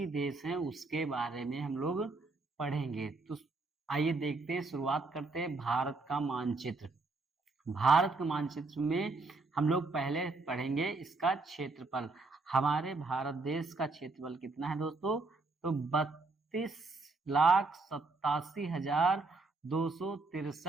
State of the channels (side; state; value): left; quieter; 3.6 dB